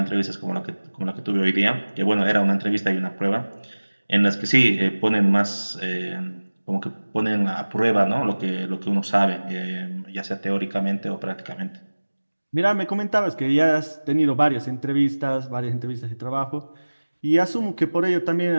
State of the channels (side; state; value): both; inverted; correlation -1.00